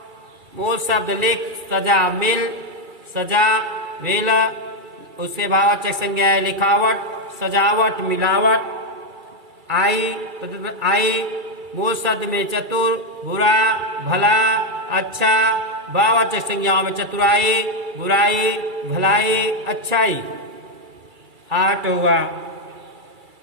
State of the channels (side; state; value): left; late; 2.3 ms